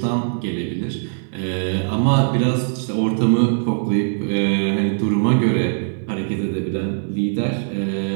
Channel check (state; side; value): silent; left; 59 dB below the other